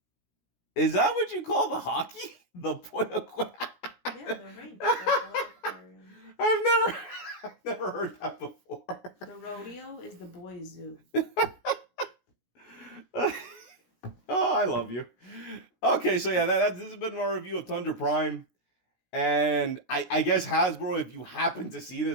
Is that what you call the hockey? The boy aquarium? Yeah, the rink. The boy aquarium. I've never heard that before. The rodeo is the boy zoo. Oh, I love you. Okay, so yeah, this has been my review of Tundra Prime. And I guess Hasbro, if you happen to see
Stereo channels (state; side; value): late; right; 17 ms